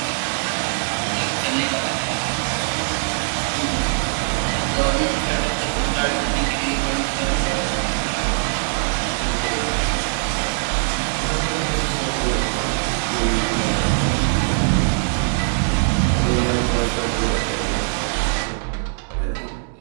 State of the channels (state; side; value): silent; left; 65 dB below the other